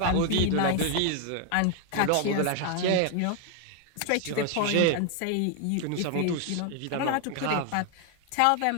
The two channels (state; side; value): different; both; correlation 0.01